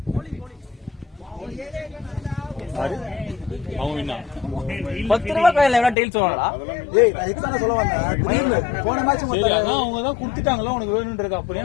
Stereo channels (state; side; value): drops out; right; at 6.0 s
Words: அவங்க என்ன 10 ரூபாய் காயில எவ்வளவு டெய்ல் சொல்றாங்களா? ஏய் நான் எக்ஸான சொல்ல வந்தேன். போன மேட்ச் அதான் அவங்க தான் கொடுத்துட்டாங்களா உனக்கு வேணும்ன்றது. அப்படியே